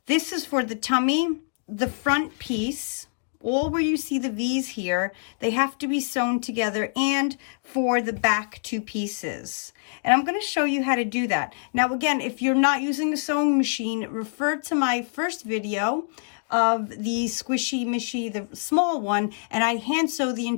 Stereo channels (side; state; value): right; silent; digital silence